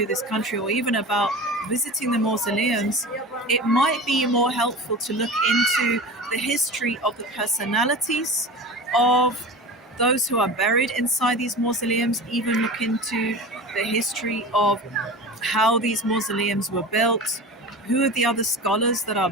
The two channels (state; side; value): normal; both; correlation 0.33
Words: this country or even about visiting the mausoleums, it might be more helpful to look into the history of the personalities of those who are buried inside these mausoleums, even look into the history of how these mausoleums were built, who are the other scholars that are